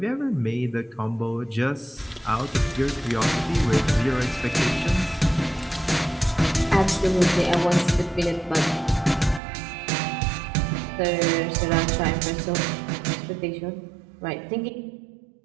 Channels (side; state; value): left; drops out; at 9.4 s